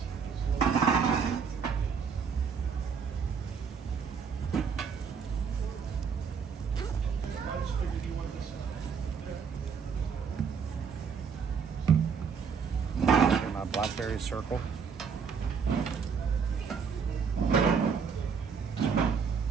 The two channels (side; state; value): left; quieter; 6.2 dB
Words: My blackberry circle.